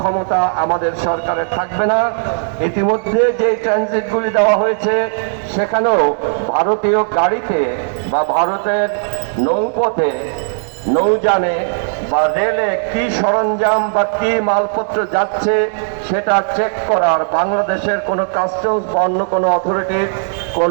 আমাদের সরকারের থাকবে না। ইতিমধ্যে যে ট্রানজিটগুলি দেওয়া হয়েছে সেখানেও ভারতীয় গাড়িতে বা ভারতের নৌপথে, নৌযানে বা রেলে কি সরঞ্জাম বা কি মালপত্র যাচ্ছে সেটা চেক করার বাংলাদেশের কোনো কাস্টমস বা অন্য কোনো অথরিটির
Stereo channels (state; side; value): silent; left; digital silence